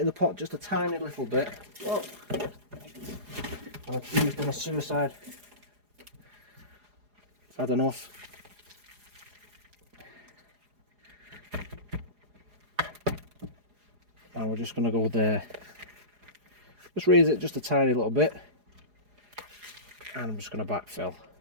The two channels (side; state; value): left; late; 4.8 ms